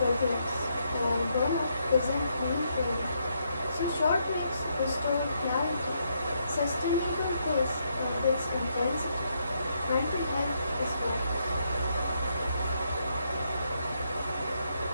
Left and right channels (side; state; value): both; inverted; correlation -0.77